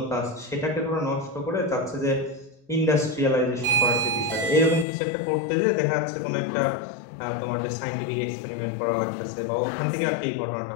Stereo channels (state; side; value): drops out; right; at 4.9 s